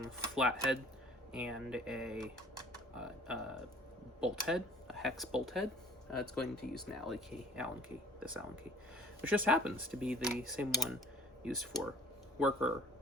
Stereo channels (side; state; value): both; normal; correlation 0.50